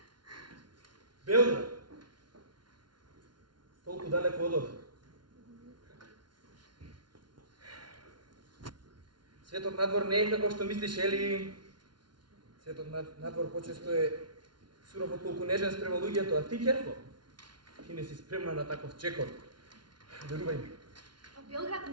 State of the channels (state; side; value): late; left; 0.71 ms